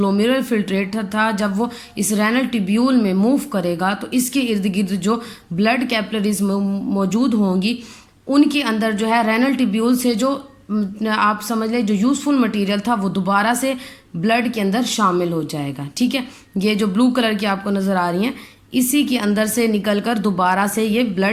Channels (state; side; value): identical; both; correlation 1.00